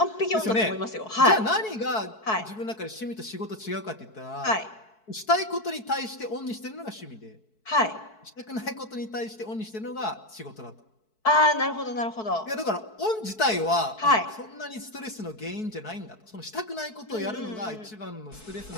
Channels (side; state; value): right; late; 4.6 ms